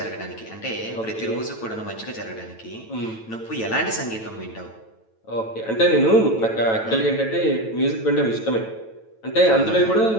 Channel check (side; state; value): right; late; 9.1 ms